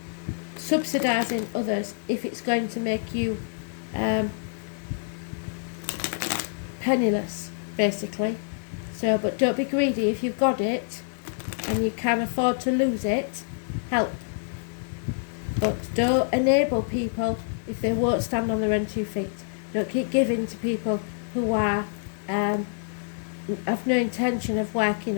subsidising others if it's going to make you penniless, basically. So, but don't be greedy. If you've got it and you can afford to lose it, help. But don't enable people if they won't stand on their own 2 feet. Don't keep giving to people who are have no intention of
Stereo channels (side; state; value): right; silent; digital silence